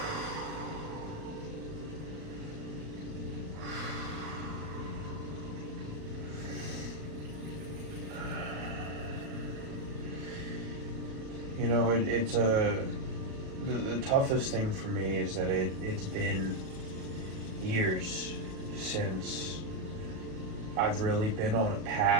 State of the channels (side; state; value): left; late; 37 ms